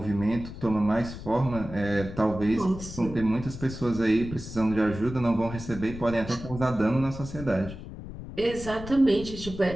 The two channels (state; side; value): noise; left; rumble, 11 dB below the sound